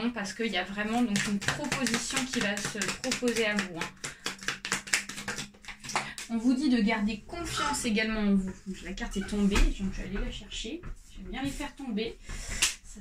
parce qu'il y a vraiment donc une proposition qui va se proposer à vous. On vous dit de garder confiance également en vous. Donc, la carte est tombée, donc je vais aller la chercher. J'aime bien les faire tomber. Ça,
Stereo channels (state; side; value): identical; both; correlation 1.00